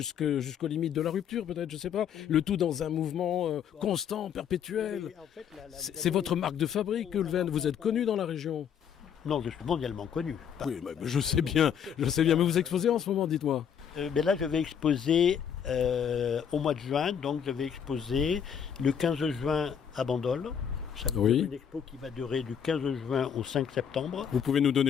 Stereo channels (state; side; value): quieter; right; 8.1 dB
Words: limites de la rupture, peut-être, je sais pas. Le tout dans un mouvement constant, perpétuel. En fait, c'est votre marque de fabrique, Goulven. Vous êtes connu dans la région. Non, je suis mondialement connu. Oui, je sais bien, mais vous exposez en ce moment, dites-moi. Mais là, je vais exposer au mois de juin, donc je vais exposer le 15 juin à Bandol. Ça va être une expo qui va durer du 15 juin au 5 septembre. Vous pouvez nous